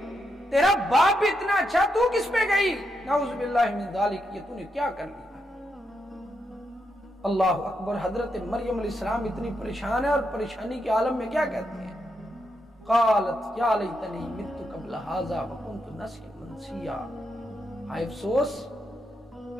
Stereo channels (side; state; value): both; normal; correlation 0.82